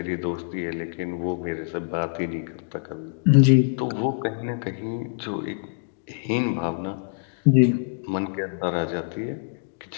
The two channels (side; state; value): right; silent; digital silence